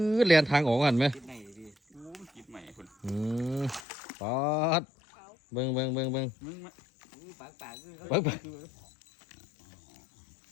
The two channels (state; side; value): drops out; right; at 3.8 s